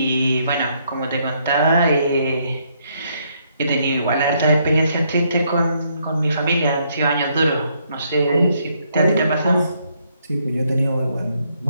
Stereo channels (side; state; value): both; inverted; correlation -0.72